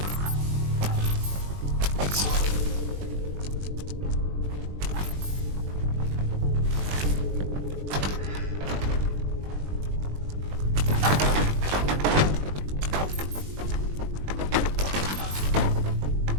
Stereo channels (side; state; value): left; late; 21 ms